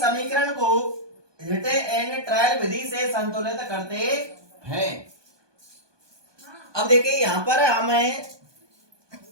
समीकरण को हिट एंड ट्रायल विधि से संतुलित करते हैं। अब देखिए यहाँ पर हमें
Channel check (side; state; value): left; late; 1.2 ms